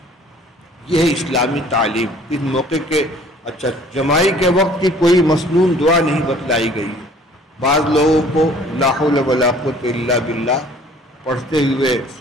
یہ ہے اسلامی تعلیم۔ اس موقع کے اچھا جمائی کے وقت کی کوئی مسنون دعا نہیں بتلائی گئی ہے۔ بعض لوگوں کو لا حول ولا قوت الا باللہ پڑھتے ہوئے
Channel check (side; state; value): both; normal; correlation 0.53